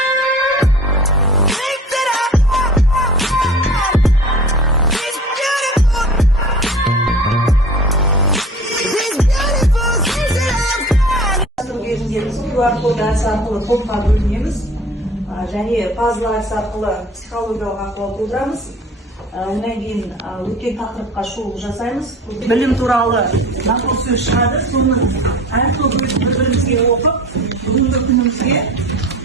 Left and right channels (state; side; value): normal; both; correlation 0.42